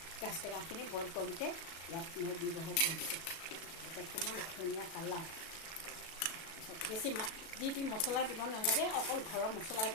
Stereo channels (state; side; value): late; right; 37 ms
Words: গাজ টেঙাখিনি বইল কৰোঁতে ইয়াত মই ব্যৱহাৰ কৰিছোঁ। এতিয়া কিমান ধুনীয়া কালাৰ। বেছি যি মছলা দিব নালাগে, অকল ঘৰৰ মছলা